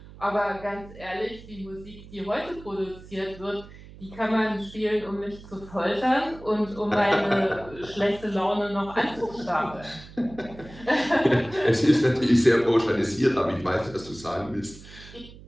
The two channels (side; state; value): right; noise; hum, 18 dB below the sound